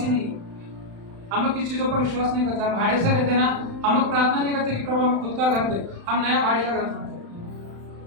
ही नहीं है, हम लोग किस चीजों पर विश्वास नहीं करते। हम भाड़े से रहते ना, हम लोग प्रार्थना नहीं करते कि प्रभु हमें खुद का घर दे, हम नया भाड़े का घर बनाते।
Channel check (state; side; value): late; left; 35 ms